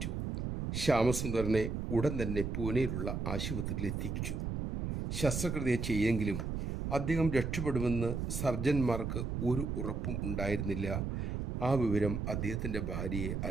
ശ്യാമസുന്ദറിനെ ഉടൻ തന്നെ പൂനെയിലുള്ള ആശുപത്രിയിൽ എത്തിച്ചു. ശസ്ത്രക്രിയ ചെയ്യെങ്കിലും അദ്ദേഹം രക്ഷപ്പെടുമെന്ന് സർജന്മാർക്ക് ഒരു ഉറപ്പും ഉണ്ടായിരുന്നില്ല. ആ വിവരം അദ്ദേഹത്തിൻ്റെ ഭാര്യയെ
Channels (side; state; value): right; noise; rumble, 2 dB below the sound